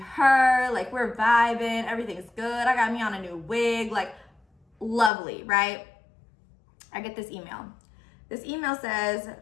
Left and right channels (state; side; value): drops out; right; at 5.1 s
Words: Like we're vibing. Everything's good. I got me on a new wig. Like lovely, right? I get this email. This email says,